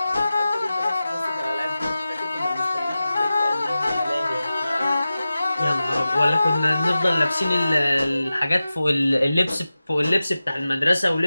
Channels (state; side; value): inverted; both; correlation -0.94